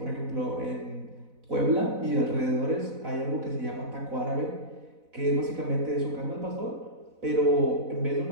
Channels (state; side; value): late; left; 4.0 ms